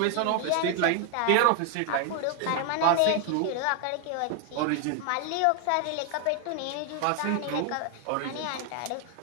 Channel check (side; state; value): both; different; correlation 0.01